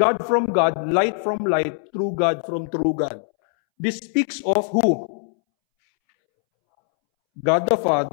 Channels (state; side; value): silent; right; 65 dB below the other